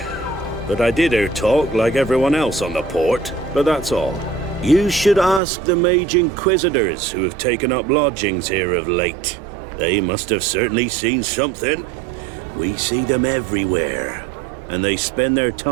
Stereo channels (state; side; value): drops out; left; at 5.4 s